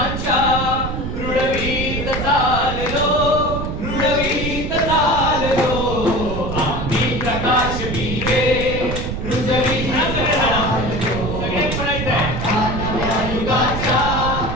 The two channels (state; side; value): noise; right; rumble, 4 dB below the sound